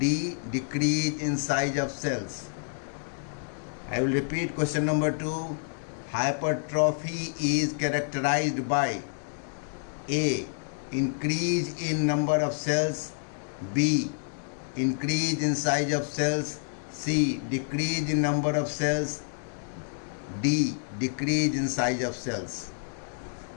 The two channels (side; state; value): right; silent; digital silence